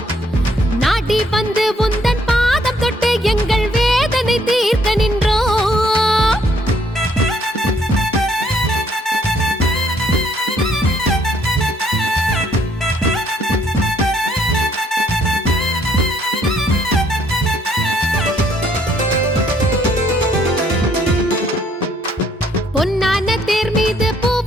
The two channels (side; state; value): both; normal; correlation 0.66